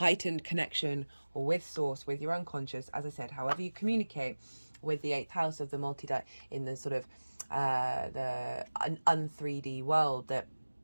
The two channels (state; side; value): inverted; both; correlation -1.00